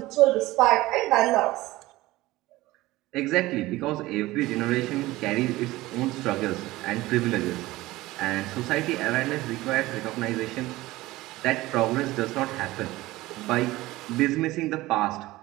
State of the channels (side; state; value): left; quieter; 18.4 dB